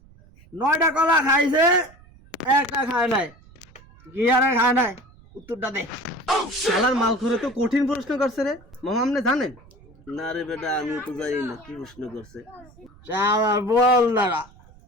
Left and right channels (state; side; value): noise; right; rumble, 25 dB below the sound